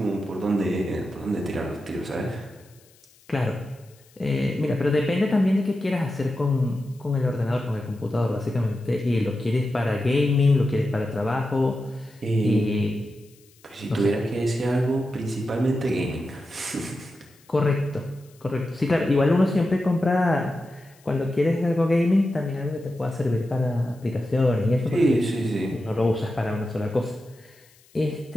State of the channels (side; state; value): left; noise; hiss, 29 dB below the sound